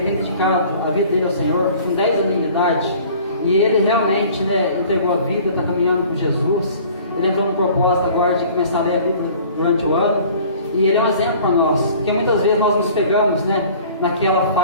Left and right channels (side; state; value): both; inverted; correlation -0.49